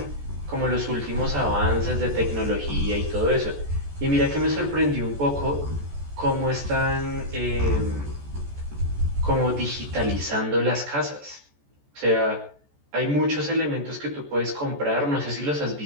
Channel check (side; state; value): left; late; 14 ms